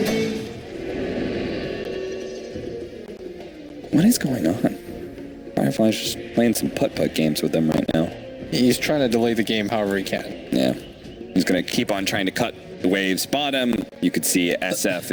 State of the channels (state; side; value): identical; both; correlation 1.00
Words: What is going on? Firefly's just playing some putt-putt games with them right now. He's trying to delay the game however he can. Yeah. He's going to keep on trying to cut the waves bottom. You could see SF